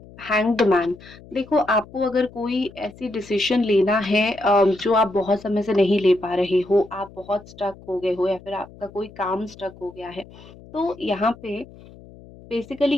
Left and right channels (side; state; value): left; noise; hum, 21 dB below the sound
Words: हैंग्ड मैन। देखो, आपको अगर कोई ऐसी डिसीजन लेना है जो आप बहुत समय से नहीं ले पा रहे हो, आप बहुत स्टक हो गए हो या फिर आपका कोई काम स्टक हो गया है, तो यहाँ पे बेसिकली